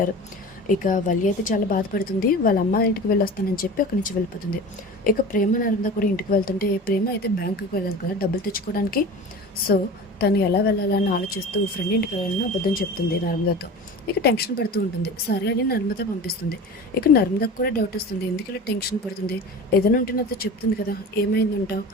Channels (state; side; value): normal; both; correlation 0.35